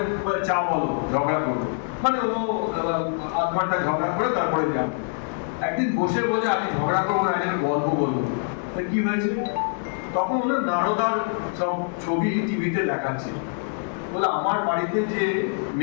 চা বলো, ঝগড়া করবো, মানে ও 1/2 ঘন্টা ঝগড়া করে তারপরে যান। একদিন বসে বলে আমি ঝগড়া করবো না, একটা গল্প বলবো। কি হয়েছে? তখন ওনার নারদার সব ছবি টিভিতে দেখাচ্ছে। বলে আমার বাড়িতে যে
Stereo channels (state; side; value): silent; right; 58 dB below the other